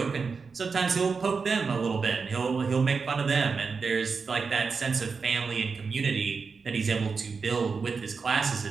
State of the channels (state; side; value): quieter; left; 5.0 dB